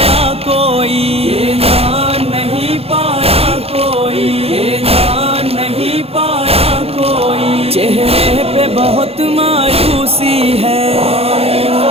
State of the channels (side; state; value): left; late; 0.29 ms